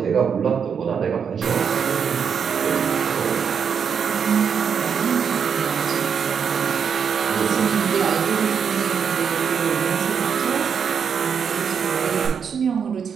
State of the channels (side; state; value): left; quieter; 6.9 dB